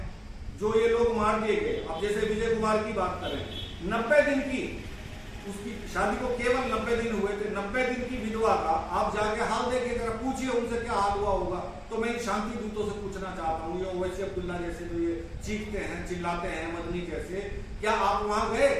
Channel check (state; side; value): identical; both; correlation 1.00